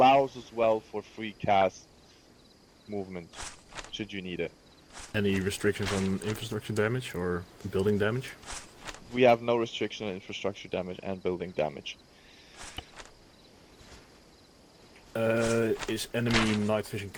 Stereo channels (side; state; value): both; identical; correlation 1.00